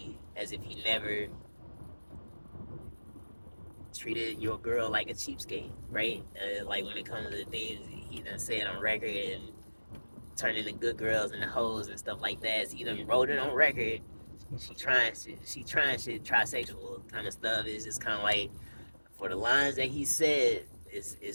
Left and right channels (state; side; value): inverted; both; correlation -1.00